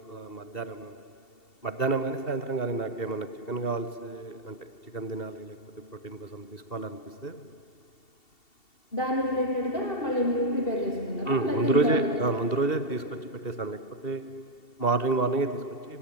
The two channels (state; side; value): late; right; 2.7 ms